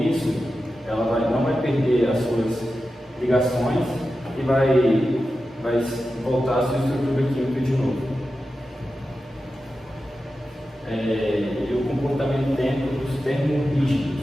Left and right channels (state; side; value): normal; both; correlation 0.92